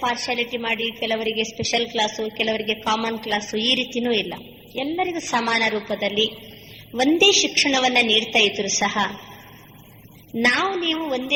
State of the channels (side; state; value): both; identical; correlation 1.00